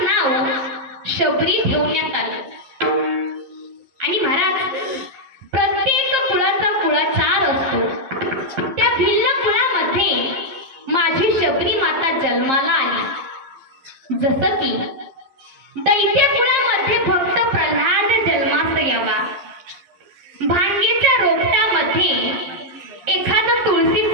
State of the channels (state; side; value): late; left; 11 ms